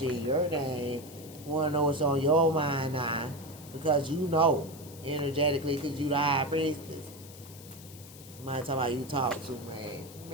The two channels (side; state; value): left; noise; hiss, 18 dB below the sound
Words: your name. You want to know what's on your mind now. Because you know, energetically, because you the high priestess. Somebody talking about you talk too much.